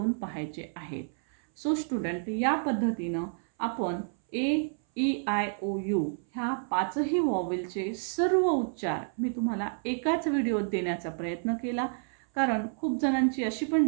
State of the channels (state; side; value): silent; left; 58 dB below the other